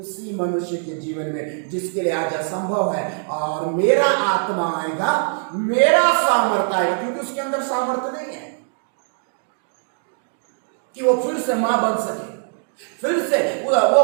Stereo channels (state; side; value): silent; left; 64 dB below the other